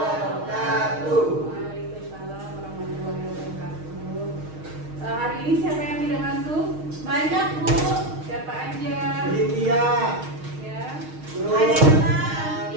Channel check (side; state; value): left; late; 6.4 ms